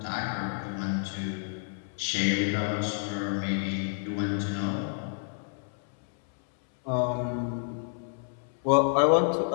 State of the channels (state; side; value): silent; right; 58 dB below the other